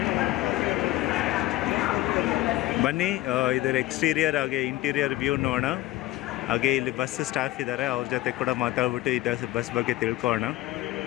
ಬನ್ನಿ ಇದರ ಎಕ್ಸ್ಟೀರಿಯರ್ ಹಾಗೆ ಇಂಟೀರಿಯರ್ ವ್ಯೂ ನೋಡೋಣ. ಹಾಗೆ ಇಲ್ಲಿ ಬಸ್ ಸ್ಟಾಫ್ ಇದ್ದಾರೆ, ಅವ್ರ ಜೊತೆ ಕೂಡ ಮಾತಾಡ್ಬಿಟ್ಟು ಇದು ಬಸ್ ಬಗ್ಗೆ ತಿಳ್ಕೊಳ್ಳೋಣ.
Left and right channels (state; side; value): quieter; right; 17.1 dB